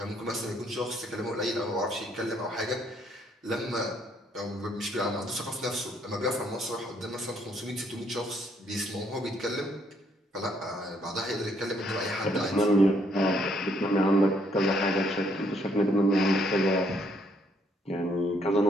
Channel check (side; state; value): both; normal; correlation 0.69